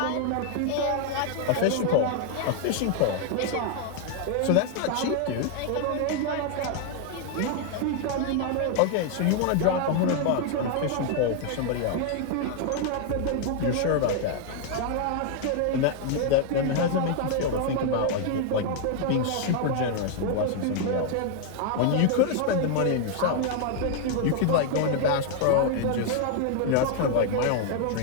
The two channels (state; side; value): different; both; correlation 0.00